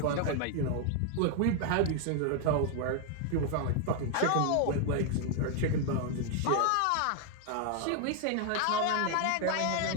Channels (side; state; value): both; different; correlation 0.00